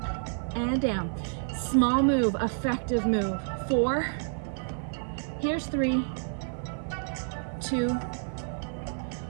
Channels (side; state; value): left; silent; 58 dB below the other